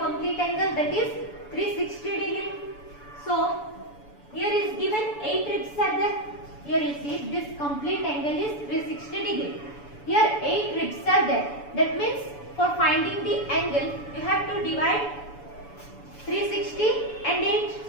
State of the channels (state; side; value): late; right; 7.0 ms